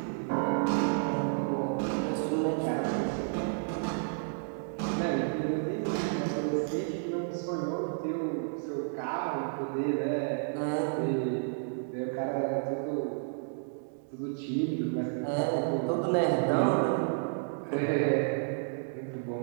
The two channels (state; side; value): silent; left; digital silence